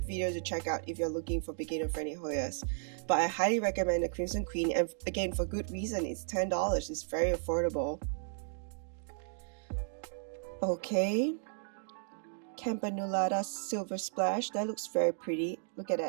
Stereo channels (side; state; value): left; silent; digital silence